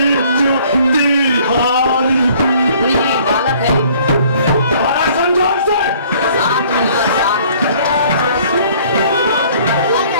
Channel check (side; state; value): both; inverted; correlation -0.56